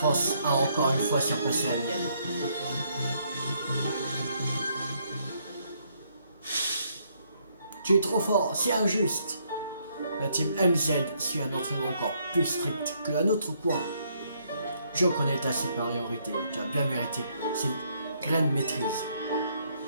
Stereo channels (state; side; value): inverted; both; correlation -0.71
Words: a encore une fois surpassé la mienne. Tu es trop fort, c'est injuste. La team MZ suit un entraînement encore plus strict que la nôtre, quoi. Je reconnais ta supériorité, tu as bien mérité cette graine maîtrise.